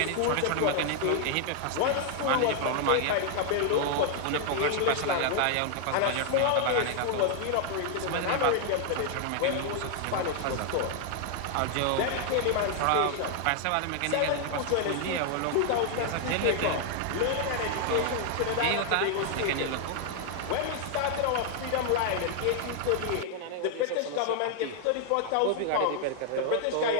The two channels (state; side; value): different; both; correlation 0.00